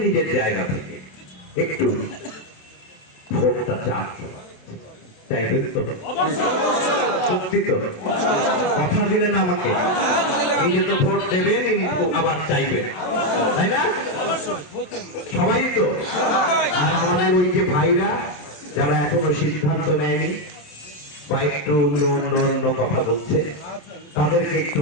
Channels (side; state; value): right; late; 28 ms